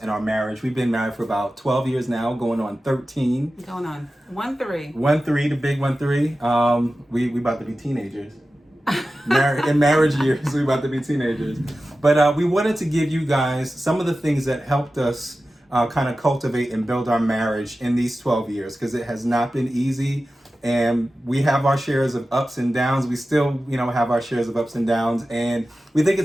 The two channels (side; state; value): both; normal; correlation 0.94